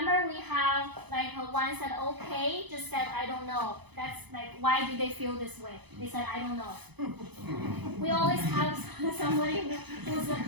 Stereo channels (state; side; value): late; left; 0.99 ms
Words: we have like one said okay, just said I don't know. That's like, why do they feel this way? They said I don't know. We always have somebody who's